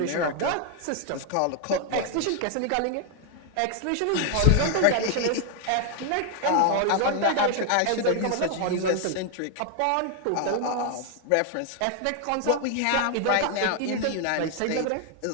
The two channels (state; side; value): different; both; correlation 0.00